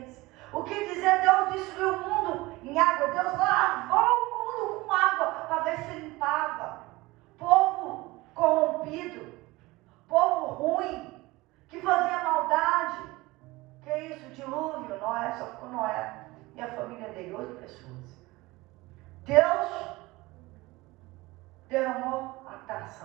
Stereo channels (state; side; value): quieter; left; 20.9 dB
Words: O que dizer? Deus destruiu o mundo em água. Deus lavou o mundo com água para ver se limpava. Povo corrompido. Povo ruim, que fazia maldade. Que é isso? Dilúvio. Noé, só ficou Noé e a família dele, 8 pessoas. Deus derramou a